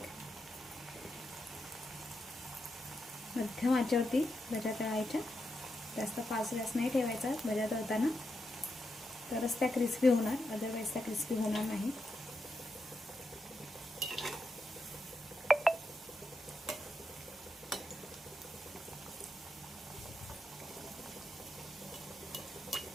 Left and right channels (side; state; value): both; normal; correlation 0.85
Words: मध्यम आचेवरती भज्या तळायच्या. जास्त फास्ट गॅस नाही ठेवायचा भज्या तळताना, तरच त्या क्रिस्पी होणार, अदरवाईज त्या क्रिस्पी होणार नाही.